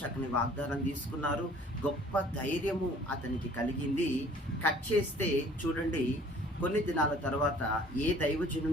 వాగ్దానం తీసుకున్నారు, గొప్ప ధైర్యము అతనికి కలిగింది. కట్ చేస్తే చూడండి, కొన్ని దినాల తర్వాత ఏ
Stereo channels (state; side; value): normal; both; correlation 0.53